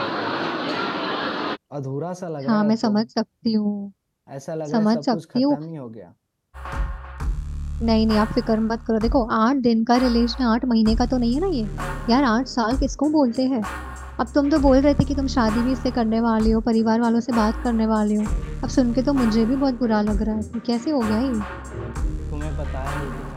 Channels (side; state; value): both; identical; correlation 1.00